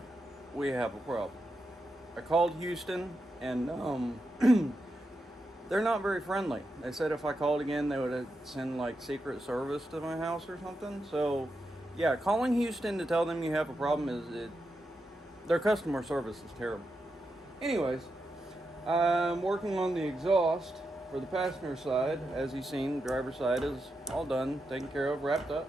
we have a problem. I called Houston, and they're not very friendly. They said if I called again, they would send like Secret Service to my house or something. So, yeah, calling Houston to tell them you have a problem their customer service is terrible. Anyways, I'm working on the exhaust for the passenger side. As you've seen, the driver's side is all done, taken care of, wrapped up.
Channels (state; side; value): normal; both; correlation 0.87